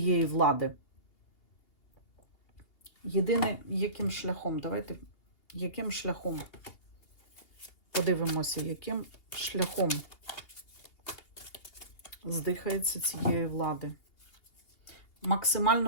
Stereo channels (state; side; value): late; right; 2.8 ms